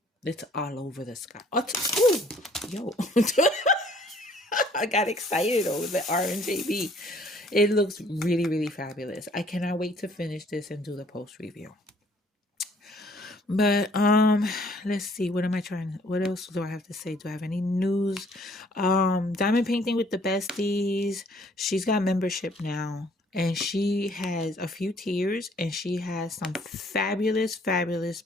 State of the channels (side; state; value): both; normal; correlation 0.59